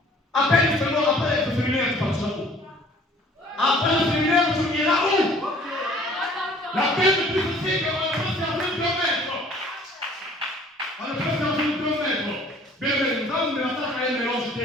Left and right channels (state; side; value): normal; both; correlation 0.54